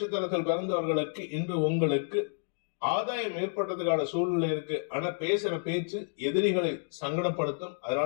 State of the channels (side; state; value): right; silent; digital silence